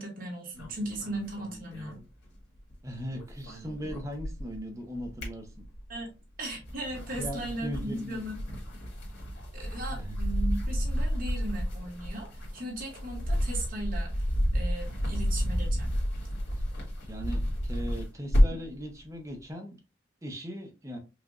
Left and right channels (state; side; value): normal; both; correlation 0.91